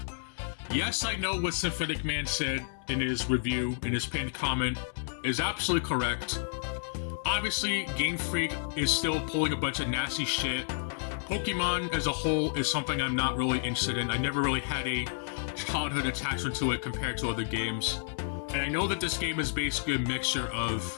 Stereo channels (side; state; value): right; silent; digital silence